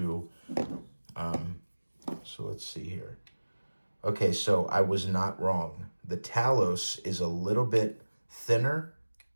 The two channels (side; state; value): both; inverted; correlation -1.00